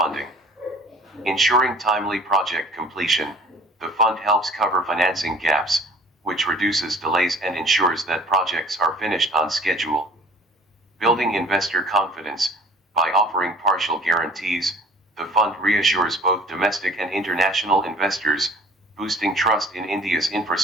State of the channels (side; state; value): both; normal; correlation 0.48